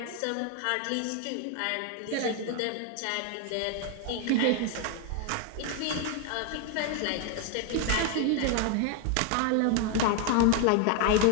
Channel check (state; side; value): different; both; correlation 0.01